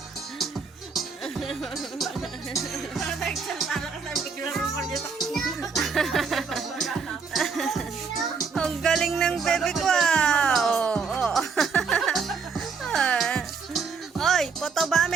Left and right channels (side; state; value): left; quieter; 5.3 dB